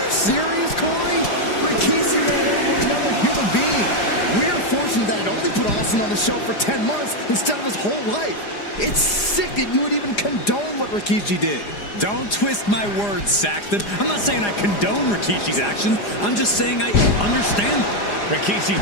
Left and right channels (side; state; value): right; late; 4.9 ms